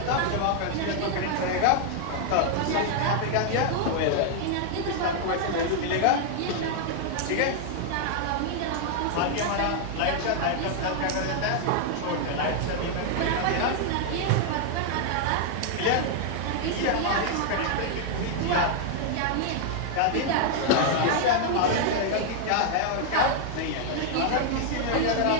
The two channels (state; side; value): different; both; correlation 0.00